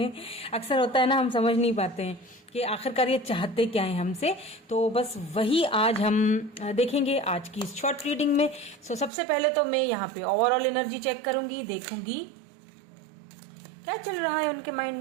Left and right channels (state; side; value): drops out; left; at 9.1 s